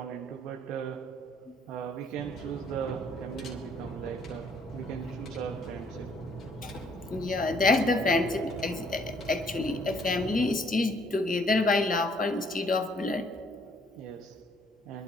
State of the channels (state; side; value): normal; both; correlation 0.64